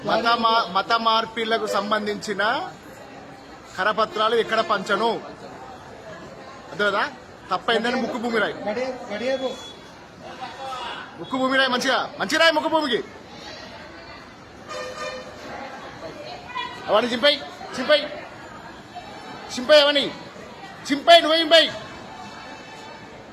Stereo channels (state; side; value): identical; both; correlation 1.00